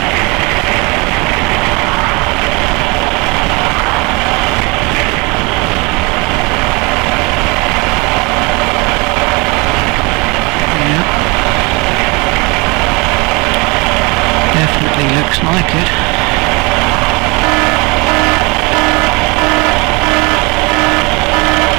Yeah. Definitely looks like it.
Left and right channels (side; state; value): left; quieter; 27.4 dB